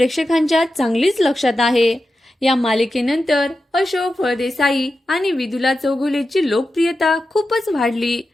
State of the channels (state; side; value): normal; both; correlation 0.91